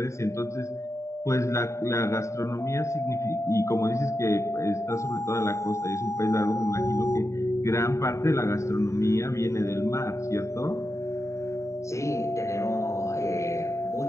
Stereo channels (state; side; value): late; right; 0.14 ms